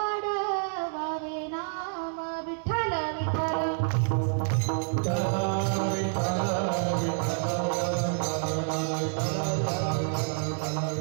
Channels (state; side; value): silent; left; 59 dB below the other